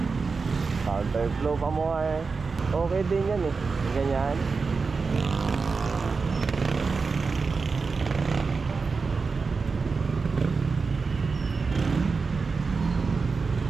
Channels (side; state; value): left; quieter; 4.6 dB